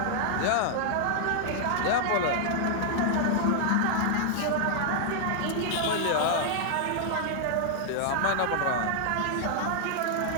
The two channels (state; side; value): different; both; correlation 0.00